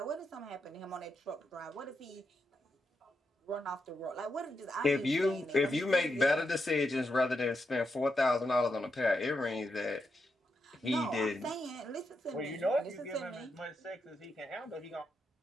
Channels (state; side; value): normal; both; correlation 0.84